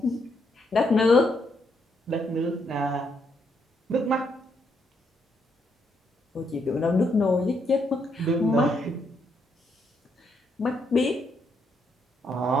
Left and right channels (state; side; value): normal; both; correlation 0.76